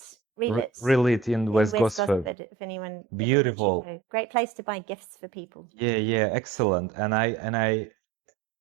in West Gosford. If anyone, Beautiful, great place to buy gifts for people. Yeah, excellent. And I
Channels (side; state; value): left; drops out; at 2.4 s